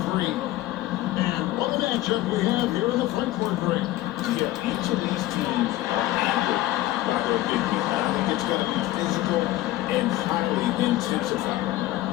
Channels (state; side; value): quieter; right; 15.9 dB